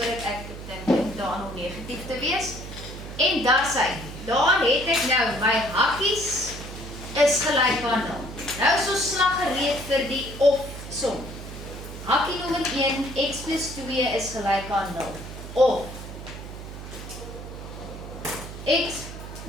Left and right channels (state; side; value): noise; right; hum, 11 dB below the sound